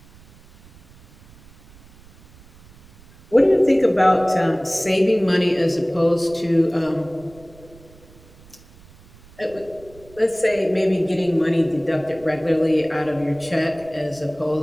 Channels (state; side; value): noise; right; rumble, 25 dB below the sound